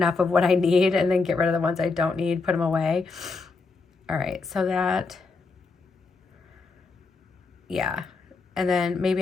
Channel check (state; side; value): quieter; right; 4.2 dB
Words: of what I need and then get rid of the ones I don't need, put them away. All right, so that, yeah. And then